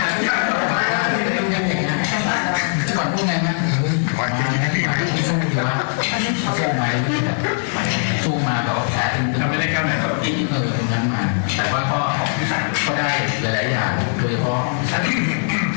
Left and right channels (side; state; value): right; silent; 59 dB below the other